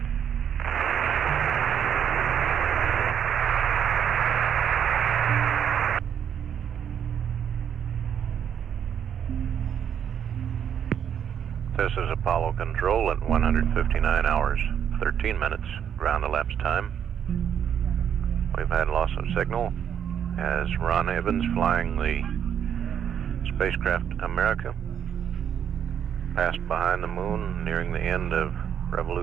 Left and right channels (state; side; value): quieter; left; 8.7 dB